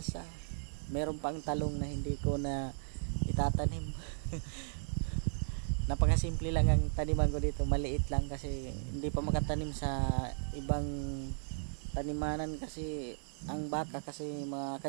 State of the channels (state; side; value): silent; left; digital silence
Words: Meron pang talong na hindi ko na itatanim. Napakasimple lang ang taniman ko dito, maliit lang kasi hindi pa makatanim sa ibang tanimanan kasi ang baka kasi mga